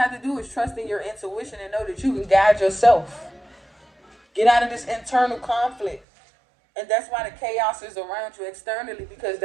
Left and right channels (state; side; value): drops out; left; at 6.0 s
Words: to do is trust in your intuition and know that you can guide yourself. Get out of this internal conflict. And that's why the chaos is around you externally, because